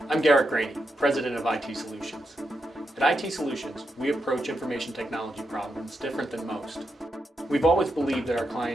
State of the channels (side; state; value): both; normal; correlation 0.85